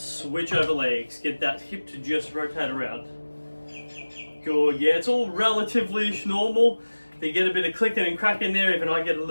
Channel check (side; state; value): both; inverted; correlation -1.00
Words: over legs. Get that hip to just rotate around. Good, yeah, it's all relatively normal. If you get a bit of clicking and cracking there, even I get a